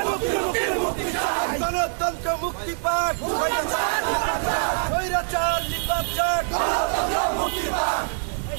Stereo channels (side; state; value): left; silent; digital silence